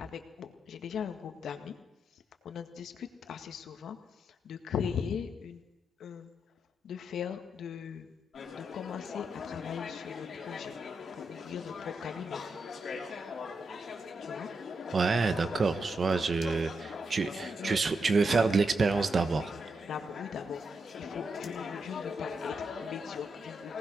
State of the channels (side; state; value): both; normal; correlation 0.84